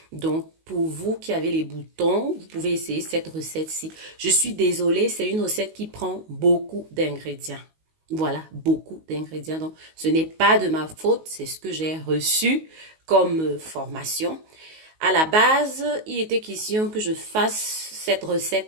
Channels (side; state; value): left; late; 19 ms